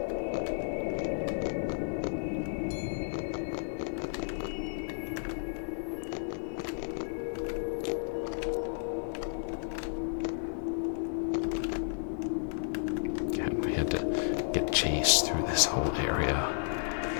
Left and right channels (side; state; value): right; silent; 56 dB below the other